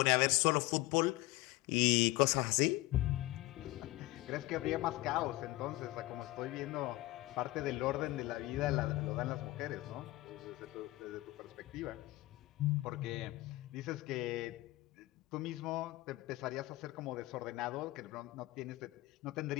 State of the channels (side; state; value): right; quieter; 19.1 dB